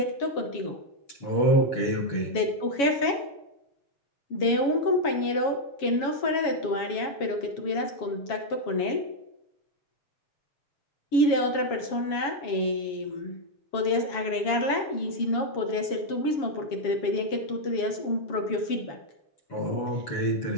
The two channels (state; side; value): late; right; 7.2 ms